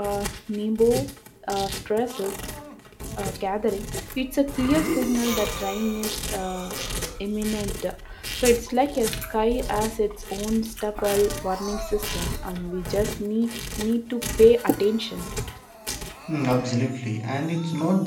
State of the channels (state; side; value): identical; both; correlation 1.00